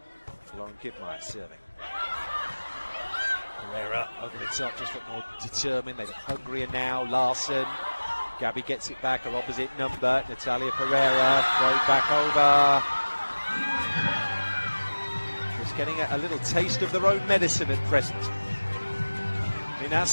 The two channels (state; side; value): inverted; both; correlation -1.00